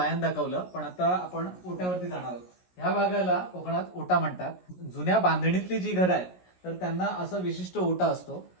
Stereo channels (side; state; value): right; late; 17 ms